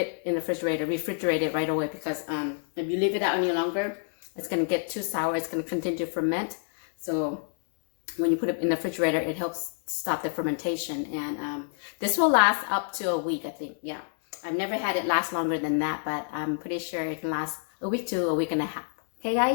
in the refrigerate it right away, because if you leave it out any longer, it's gonna get too sour. It's gonna continue to ferment. So when you put it in the refrigerator, it helps stop the fermentation. And this will last up to a week, I think. Yeah, I've never had it last longer than that, but I'm pretty sure it can last a week to a week and a half. Okay,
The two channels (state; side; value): silent; right; digital silence